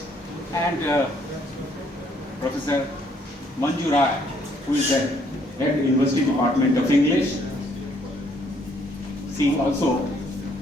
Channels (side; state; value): both; normal; correlation 0.66